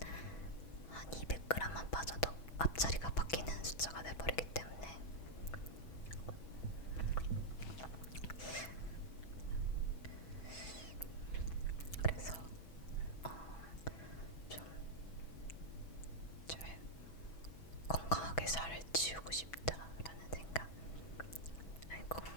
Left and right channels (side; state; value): right; late; 6.1 ms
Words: 한 200g만 빠져도 앞자리가 바뀌는 숫자가 돼버리기 때문에 그래서 좀 잘 건강하게 살을 찌우고 싶다라는 생각. 아니,